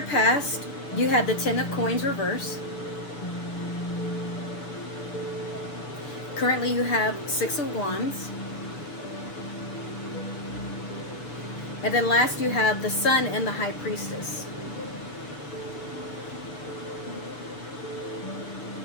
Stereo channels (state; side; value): late; right; 6.9 ms